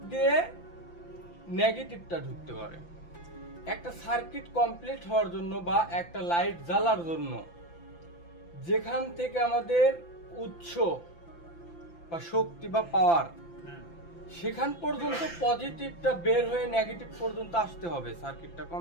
দিয়ে নেগেটিভটা ঢুকতে পারে। একটা সার্কিট কমপ্লিট হওয়ার জন্য বা একটা লাইট জ্বালার জন্য যেখান থেকে আমাদের উৎস বা শক্তি বা পাওয়ার সেখান পর্যন্ত পজিটিভটা বের হয়ে নেগেটিভ পর্যন্ত আসতে হবে সার্কিটটা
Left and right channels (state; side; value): late; right; 5.9 ms